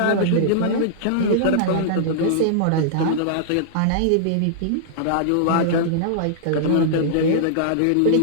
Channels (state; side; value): different; both; correlation -0.02